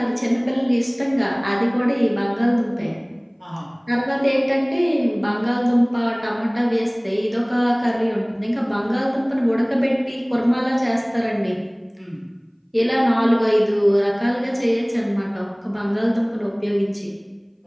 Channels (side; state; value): both; identical; correlation 1.00